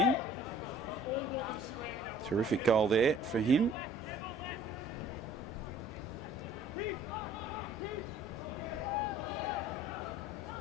Terrific goal there for him.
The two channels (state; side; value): normal; both; correlation 0.52